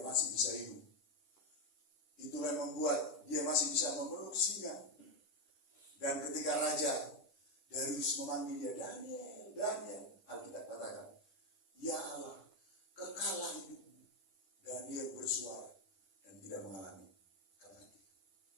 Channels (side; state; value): right; late; 11 ms